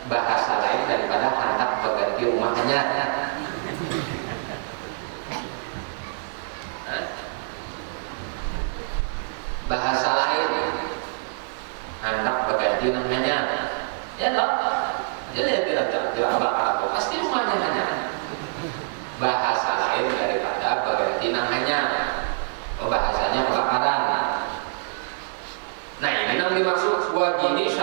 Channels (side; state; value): left; silent; digital silence